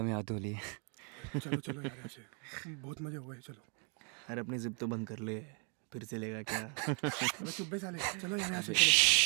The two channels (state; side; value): quieter; left; 38.7 dB